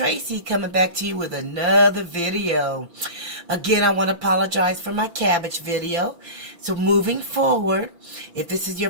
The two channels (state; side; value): late; left; 6.0 ms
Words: coming back to you with another video. Again, I want to apologize for my cabbage video. So moving forward, if this is your